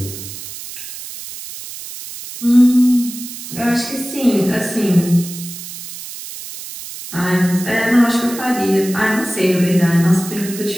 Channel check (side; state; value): right; noise; hiss, 11 dB below the sound